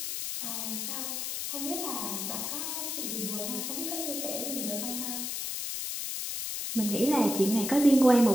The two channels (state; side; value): noise; left; hiss, 3 dB below the sound